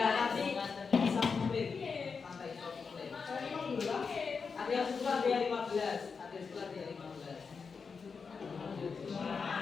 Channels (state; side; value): quieter; right; 5.3 dB